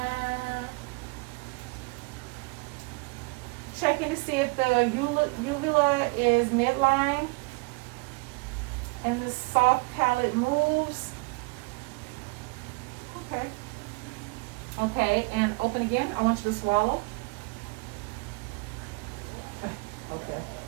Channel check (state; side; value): quieter; left; 28.6 dB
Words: Checking to see if the uvula is midline and the soft palate moves. Okay. Okay, and open again. I want you to swallow. Okay.